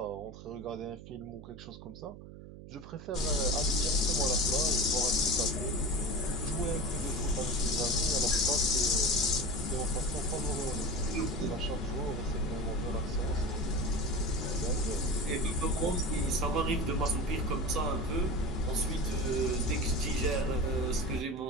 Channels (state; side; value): noise; right; hum, 15 dB below the sound